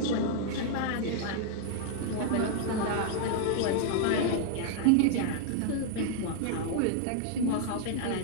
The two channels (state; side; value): different; both; correlation -0.01